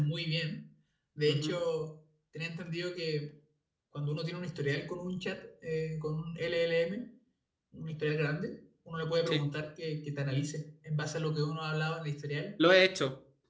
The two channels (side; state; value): both; identical; correlation 1.00